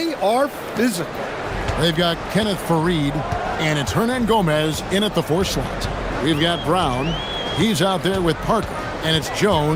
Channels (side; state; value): both; identical; correlation 1.00